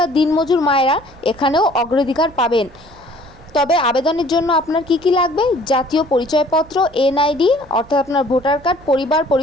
দিনমজুর মায়েরা এখানেও অগ্রাধিকার পাবেন। তবে আবেদনের জন্য আপনার কি কি লাগবে? জাতীয় পরিচয়পত্র, এনআইডি অর্থাৎ আপনার ভোটার কার্ড, পরিবার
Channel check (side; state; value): right; noise; hum, 25 dB below the sound